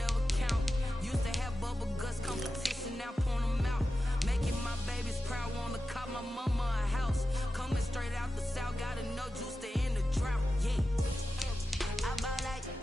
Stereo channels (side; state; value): both; normal; correlation 0.92